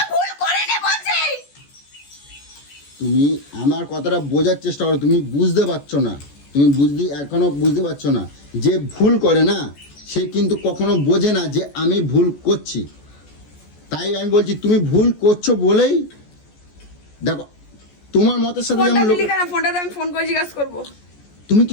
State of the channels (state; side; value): late; right; 14 ms